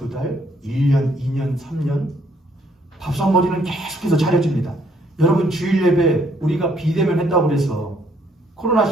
달, 1년, 2년, 3년 밥상머리는 계속해서 차려줍니다. 여러분 주일 예배 우리가 비대면 했다고 그래서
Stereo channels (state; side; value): normal; both; correlation 0.68